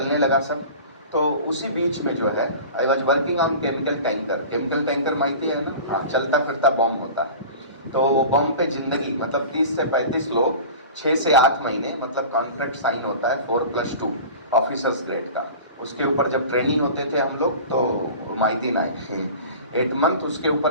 लगा सब। तो उसी बीच में जो है, I was working on chemical tanker. Chemical tanker माहिती है ना? हाँ, चलता फिरता बॉम्ब होता है। तो वो बॉम्ब पे जिंदगी, मतलब 30 से 35 लोग 6 से 8 महीने, मतलब कॉन्ट्रैक्ट साइन होता है 4+2 ऑफिसर्स ग्रेड का। उसके ऊपर जब ट्रेनिंग होते थे हम लोग तो माहिती ना 8 मंथ, उसके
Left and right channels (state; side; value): inverted; both; correlation -0.37